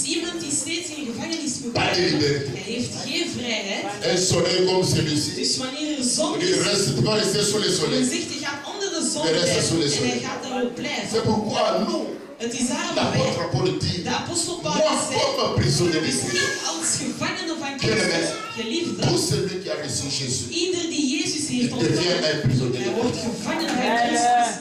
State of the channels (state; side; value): identical; both; correlation 1.00